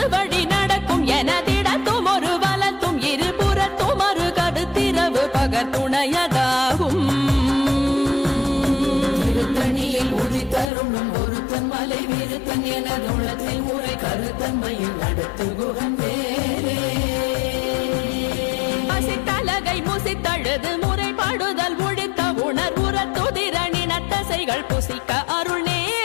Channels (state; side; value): drops out; right; at 10.7 s